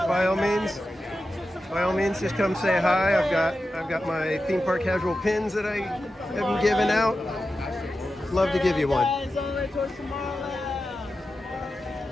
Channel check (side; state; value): both; normal; correlation 0.92